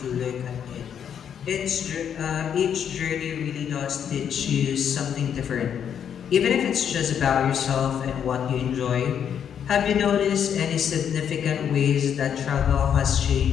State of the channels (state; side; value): quieter; right; 8.4 dB